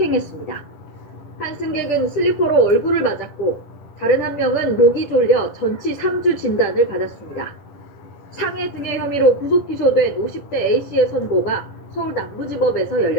한 승객은 슬리퍼로 얼굴을 맞았고 다른 한 명은 목이 졸려 전치 3주 진단을 받았습니다. 상해 등의 혐의로 구속 기소된 50대 A씨의 선고가 서울 남부지법에서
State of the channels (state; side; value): late; right; 10 ms